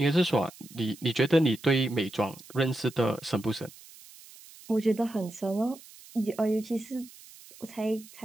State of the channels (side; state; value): right; noise; hiss, 21 dB below the sound